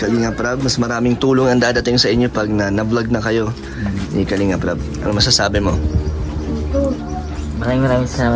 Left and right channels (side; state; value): both; identical; correlation 1.00